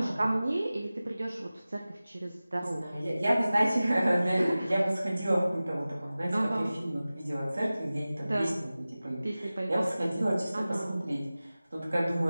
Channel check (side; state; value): both; inverted; correlation -0.97